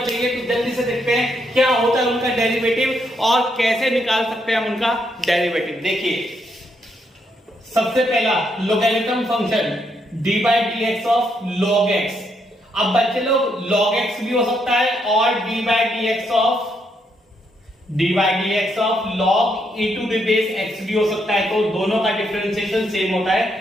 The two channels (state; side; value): normal; both; correlation 0.77